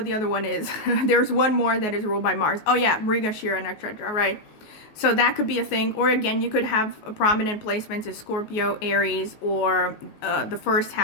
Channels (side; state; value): right; late; 19 ms